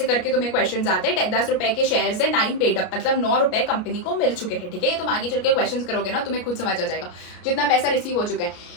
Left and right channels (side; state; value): right; late; 32 ms